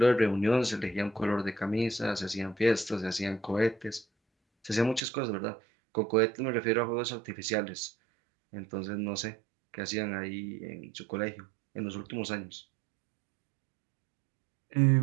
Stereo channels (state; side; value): drops out; left; at 5.0 s